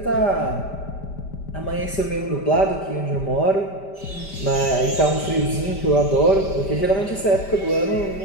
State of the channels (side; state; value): right; late; 5.1 ms